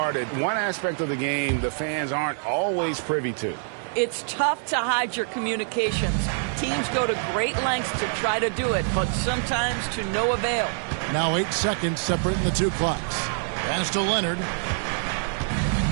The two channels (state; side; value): silent; left; 61 dB below the other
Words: One aspect of the game the fans aren't always privy to. It's tough to hide your communications. Teams go to great lengths to try to do it, but sometimes to no avail. Now 8 seconds separating the two clocks. Pass to Leonard.